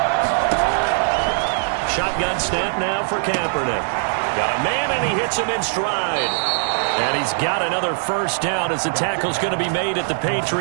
Shotgun snap now for Kaepernick. Got a man, and he hits him in stride. And he's got another first down as the tackle's going to be made at the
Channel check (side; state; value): left; silent; 65 dB below the other